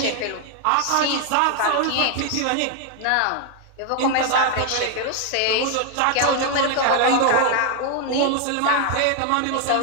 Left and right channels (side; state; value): both; different; correlation 0.00